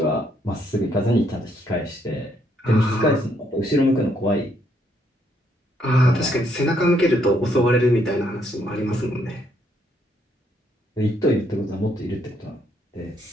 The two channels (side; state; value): both; normal; correlation 0.72